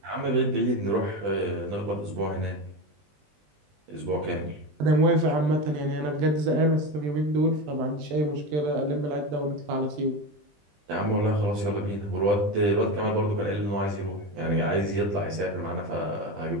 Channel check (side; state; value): left; late; 20 ms